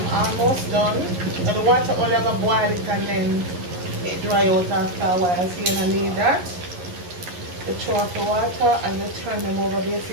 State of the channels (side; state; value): left; late; 11 ms